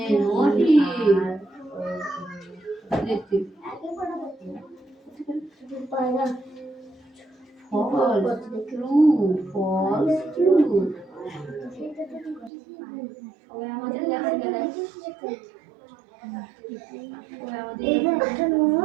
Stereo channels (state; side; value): drops out; left; at 12.5 s